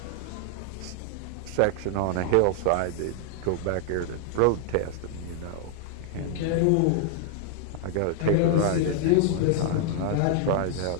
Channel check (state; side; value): different; both; correlation 0.00